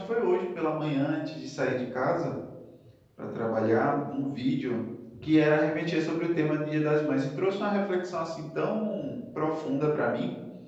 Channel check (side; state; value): both; identical; correlation 1.00